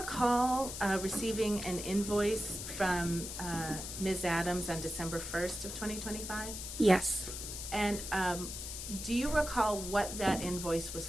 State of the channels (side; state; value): left; noise; hiss, 7 dB below the sound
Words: receiving an invoice from Ms. Adams on December 1st of 2025? Yes. And do you recall what that invoice was